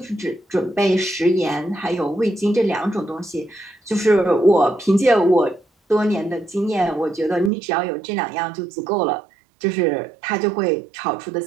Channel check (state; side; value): drops out; left; at 7.5 s